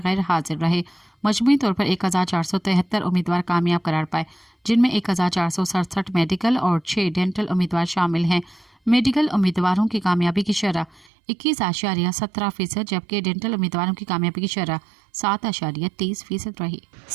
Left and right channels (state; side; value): drops out; left; at 11.1 s